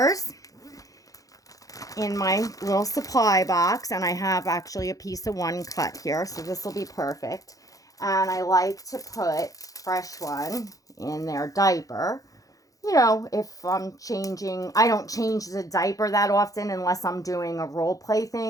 in my little supply box, and I have actually a piece of one cut here, so this will be perfect. And I like to put fresh one in their diaper. You know, if I'm changing, I don't change the diaper that often unless I'm doing a role play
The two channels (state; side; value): late; right; 0.17 ms